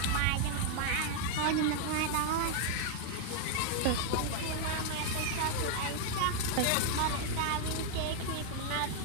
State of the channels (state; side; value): different; both; correlation 0.00